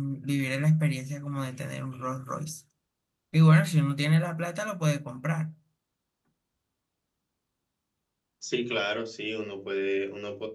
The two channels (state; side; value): identical; both; correlation 1.00